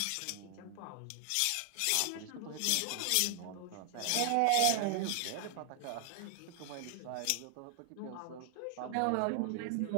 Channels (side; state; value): both; different; correlation 0.00